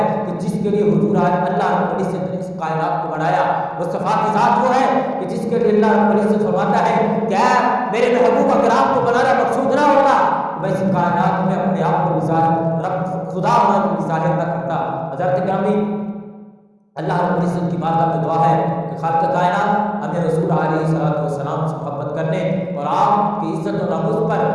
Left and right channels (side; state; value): both; identical; correlation 1.00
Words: کہ جس کے لیے حضور آج اللہ رب العزت نے اس کائنات کو بنایا۔ مصطفیٰ کی ذات وہ ہے کہ جس کے لیے اللہ رب العزت فرماتا ہے کہ اے میرے محبوب اکرام کو بنانا مقصود نہ ہوتا، میں اس کائنات میں اپنے آپ کو ظاہر رب خدا ہونا کو ظاہر نہ کرتا۔ حضرت گرامی، اللہ رب العزت کی بارگاہ میں دعا ہے کہ خالق کائنات ہمیں رسول علیہ السلام سے محبت کرنے اور آپ کی عزت و ناموس پر